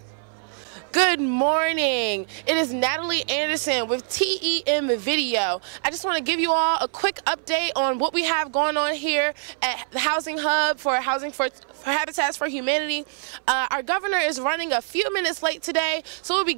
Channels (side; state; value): left; silent; 62 dB below the other